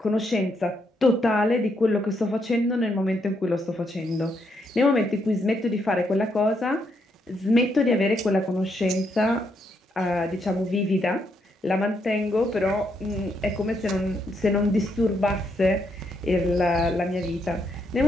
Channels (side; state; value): both; normal; correlation 0.77